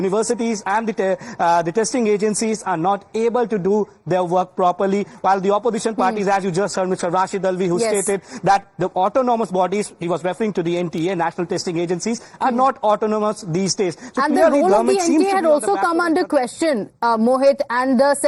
and the testing agencies are not able to do their work properly, while the opposition parties, as you just heard Mr. Rashid Alvi, who stated that the autonomous bodies, he was referring to the NTA, National Testing Agencies, are not autonomous these days. So and the role of the NTA had also come under question, Mohit, and the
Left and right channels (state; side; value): identical; both; correlation 1.00